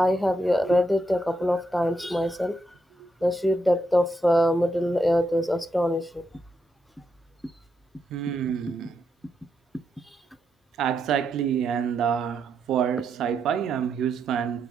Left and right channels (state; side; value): normal; both; correlation 0.82